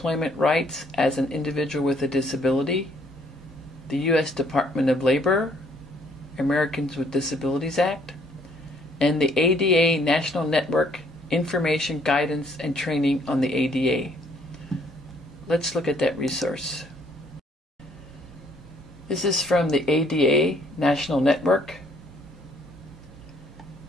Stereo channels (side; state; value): both; normal; correlation 0.64